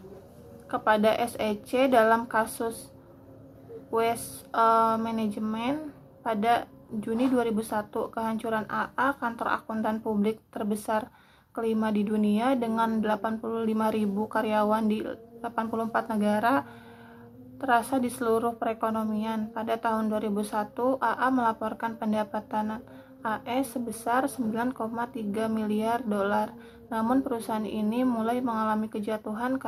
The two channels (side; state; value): both; identical; correlation 1.00